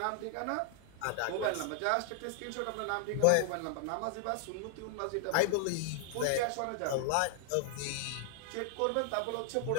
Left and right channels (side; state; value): both; different; correlation 0.00